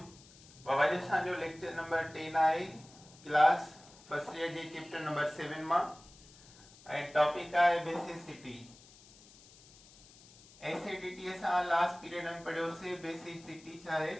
बाबा जी असांजो लेक्चर नंबर 10 आहे क्लास फर्स्ट ईयर जे चैप्टर नंबर 7 मां ऐं टॉपिक आहे बेसिसिटी। एसिडिटी असां लास्ट पीरियड में पढ़ियोसीं। बेसिसिटी छा आहे?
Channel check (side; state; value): left; noise; hiss, 23 dB below the sound